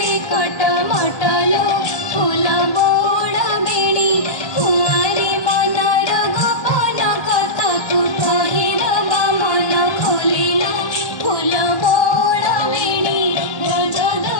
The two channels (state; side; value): late; right; 1.3 ms